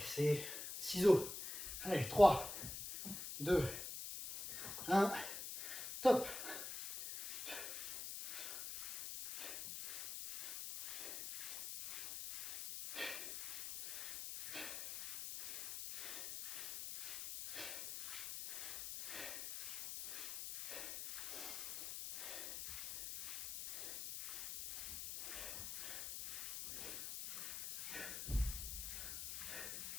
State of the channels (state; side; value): noise; left; hiss, 6 dB below the sound